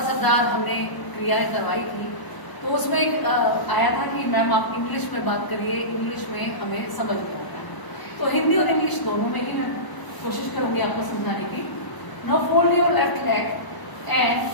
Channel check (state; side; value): late; right; 1.0 ms